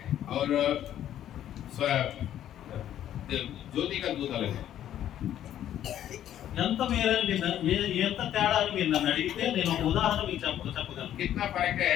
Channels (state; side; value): quieter; right; 11.3 dB